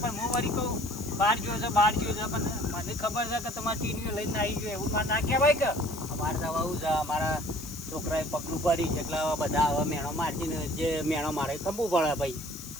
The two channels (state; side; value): noise; left; hiss, 14 dB below the sound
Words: હું વળી કહું બહાર ગયો છે પણ મને ખબર છે કે તમારે ટીવીઓ લઈને આવી ગયો એવું મારે ના કહેવાય કે અમારે તો આવું છે અમારા છોકરાએ પગલું ભરી છે એટલે હવે બધા હવે મેણો મારતી ને જે મેણો મારે ખંભવું પડે ભાઈ